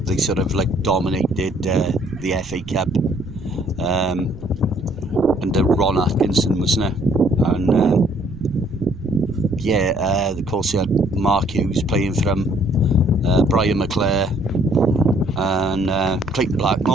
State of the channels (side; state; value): right; noise; rumble, 19 dB below the sound